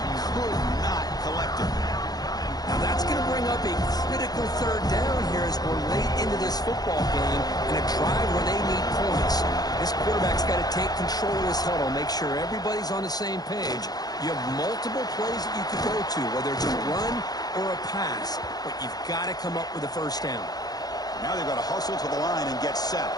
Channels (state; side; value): late; right; 0.19 ms